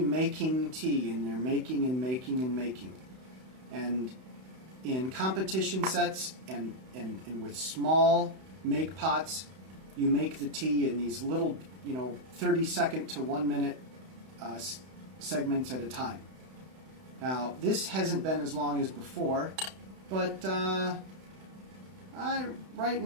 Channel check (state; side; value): late; left; 31 ms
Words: tea, and they're making and making and making. And in competition sets and with small make pots, you make the tea in these little, 30-second to 1 minute segments at a time. Now, this hasn't been as long as before, but right